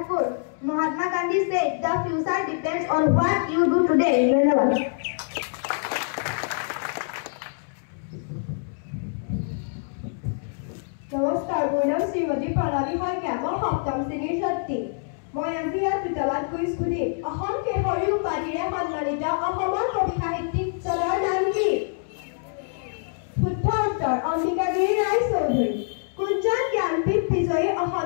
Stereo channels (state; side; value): silent; right; 62 dB below the other